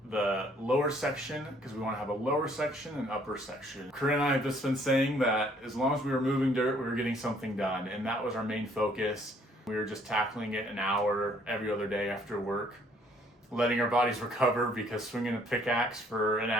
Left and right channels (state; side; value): normal; both; correlation 0.63